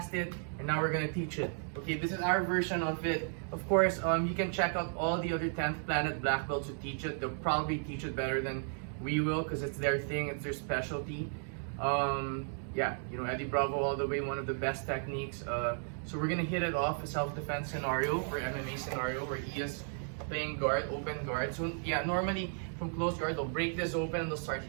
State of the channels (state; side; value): silent; left; 55 dB below the other